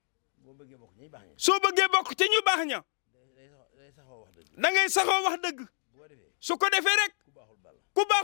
soo bëggee bokk ci ñu baax ña da ngay saxoo wax dëgg su ko defee rek ku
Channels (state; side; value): silent; right; digital silence